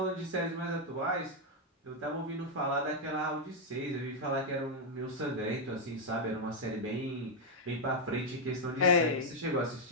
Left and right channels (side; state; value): both; normal; correlation 0.00